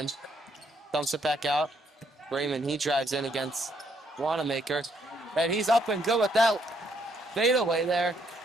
Dumps it back out. Raymond, he drives in against Wanamaker. And he's up and good with that fadeaway there.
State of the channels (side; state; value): both; normal; correlation 0.71